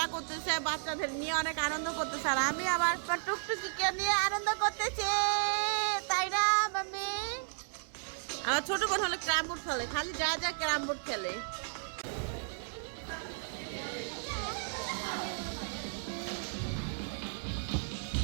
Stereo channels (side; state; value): left; silent; digital silence